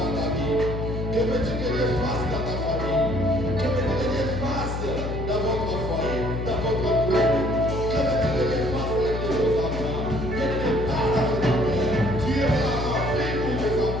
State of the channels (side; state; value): left; noise; hum, 4 dB below the sound